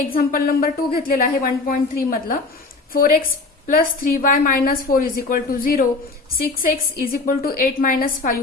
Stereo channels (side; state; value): right; quieter; 3.7 dB